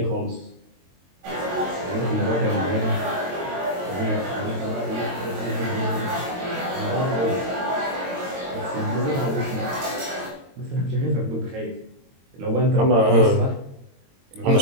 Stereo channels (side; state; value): left; late; 22 ms